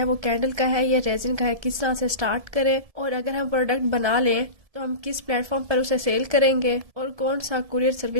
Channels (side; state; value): left; late; 1.7 ms